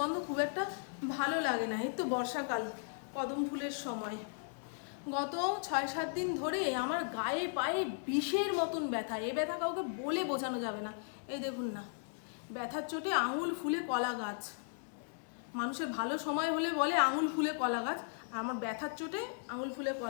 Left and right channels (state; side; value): silent; right; digital silence